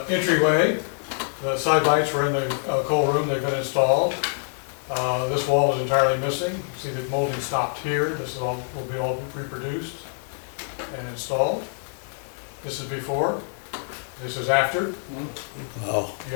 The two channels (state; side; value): silent; right; 62 dB below the other